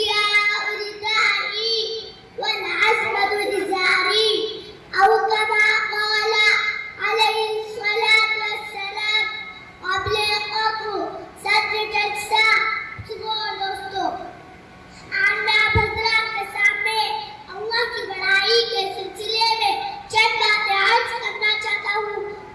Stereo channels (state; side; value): identical; both; correlation 1.00